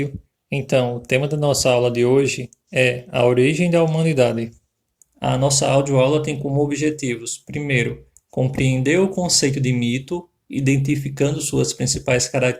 Então, o tema da nossa aula de hoje é a origem da humanidade. A nossa audioaula tem como objetivos: primeiro, compreender o conceito de mito, identificando suas principais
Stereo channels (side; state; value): both; identical; correlation 1.00